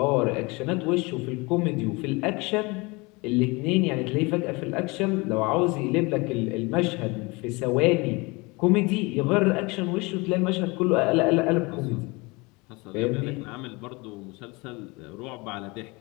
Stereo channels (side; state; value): right; quieter; 26.0 dB